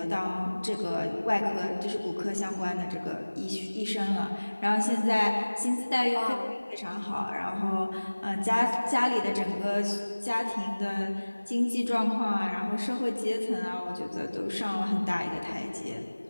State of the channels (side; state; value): both; inverted; correlation -1.00